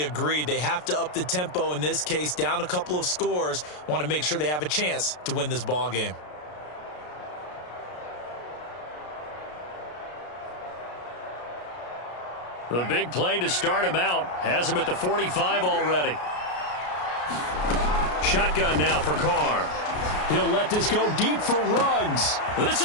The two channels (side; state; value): right; late; 33 ms